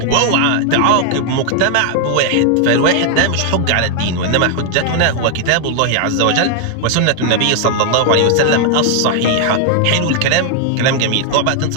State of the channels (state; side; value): different; both; correlation 0.00